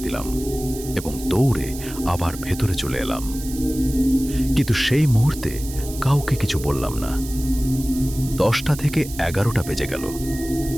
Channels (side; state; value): right; noise; hiss, 13 dB below the sound